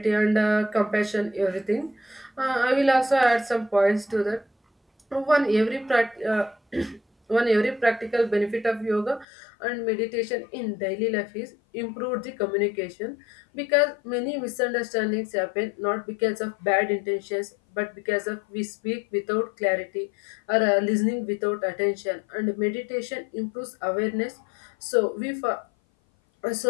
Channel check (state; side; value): drops out; right; at 9.2 s